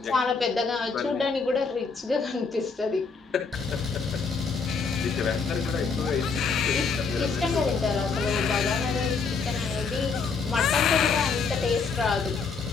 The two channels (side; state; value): right; quieter; 4.9 dB